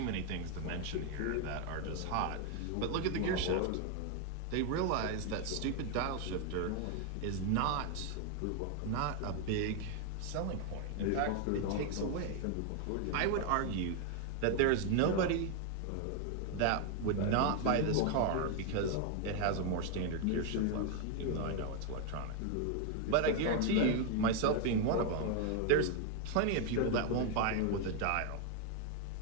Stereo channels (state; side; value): different; both; correlation 0.00